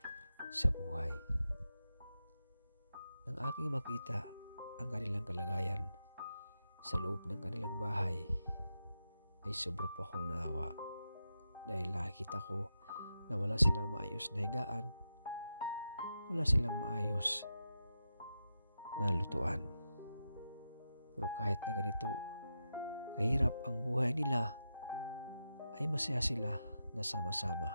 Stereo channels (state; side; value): inverted; both; correlation -0.88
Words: sa buhay. Nang aking makita ang kanilang kalagayan sa loob ng kanilang bahay ay sobra po akong naawa dahil nakikita ko na wala silang maayos na higaan, wala silang maayos na lutuan. Pero kahit na ganito kahirap ang buhay nila, ay masaya sila na